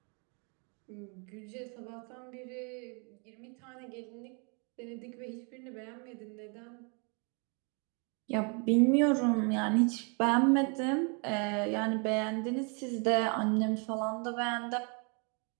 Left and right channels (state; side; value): quieter; left; 36.0 dB